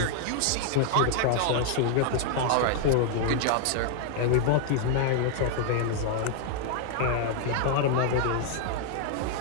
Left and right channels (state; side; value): different; both; correlation 0.00